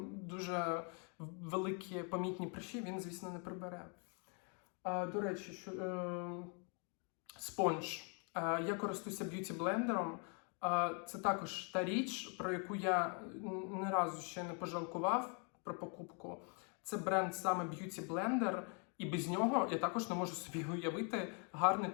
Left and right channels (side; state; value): right; quieter; 38.0 dB